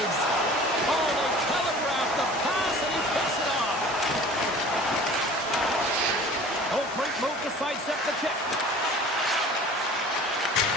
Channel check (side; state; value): both; normal; correlation 0.45